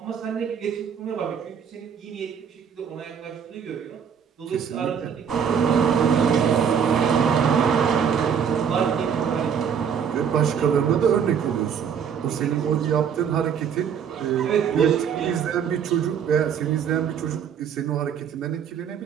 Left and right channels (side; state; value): left; quieter; 7.5 dB